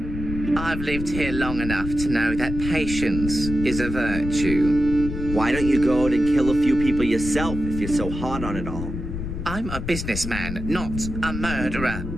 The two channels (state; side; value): noise; left; rumble, 6 dB below the sound